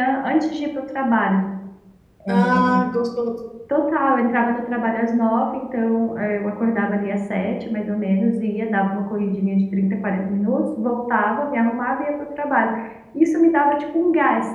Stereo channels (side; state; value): both; identical; correlation 1.00